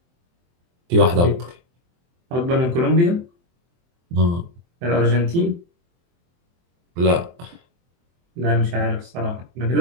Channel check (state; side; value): late; left; 23 ms